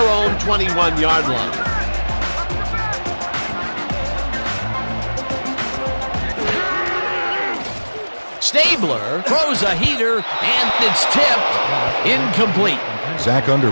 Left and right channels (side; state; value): both; inverted; correlation -1.00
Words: 21-yard line. Stabler throws a heater, and it's tipped incomplete. Zach